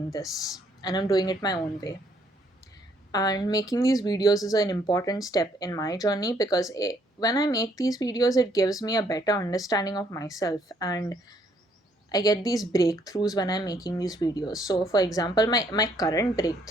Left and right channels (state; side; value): normal; both; correlation 0.68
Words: this, and I'm doing it my own way. And making these videos is an important step in my journey because when I make these videos, it gives me a better understanding of myself, and I get these breakthroughs when I'm making these videos. So, for example, my current